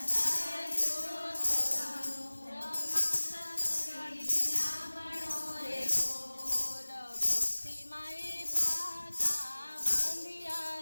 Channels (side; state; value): both; inverted; correlation -1.00